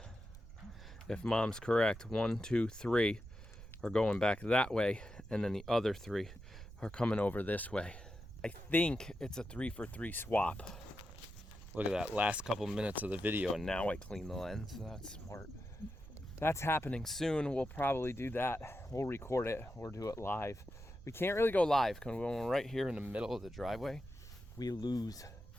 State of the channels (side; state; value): right; noise; rumble, 15 dB below the sound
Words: If mom's correct, 1, 2, 3 are going back that way. And then the other 3 are coming over this way. I think it's a 3-for-3 swap. Look at that, last couple minutes of the video, and now I clean the lens. That's smart. That's happening soon. We'll probably do that. We'll record it or do it live. We can't really go live because when we're right here in the middle of the driveway, we lose